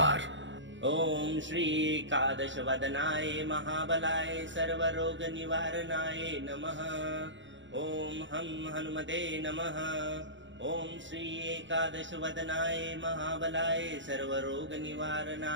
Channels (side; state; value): left; late; 0.54 ms